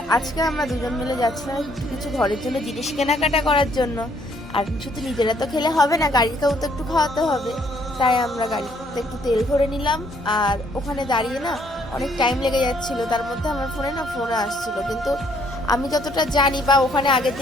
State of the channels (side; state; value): both; normal; correlation 0.67